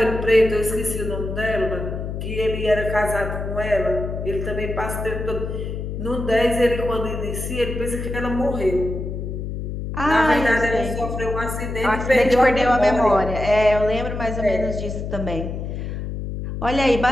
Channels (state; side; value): noise; left; hum, 5 dB below the sound